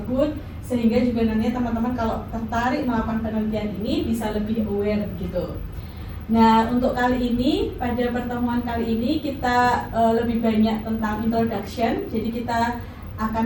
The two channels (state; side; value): identical; both; correlation 1.00